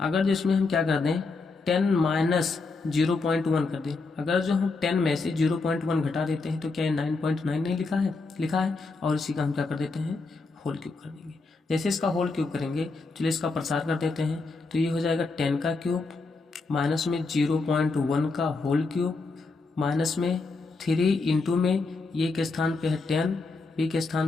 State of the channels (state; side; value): quieter; right; 3.9 dB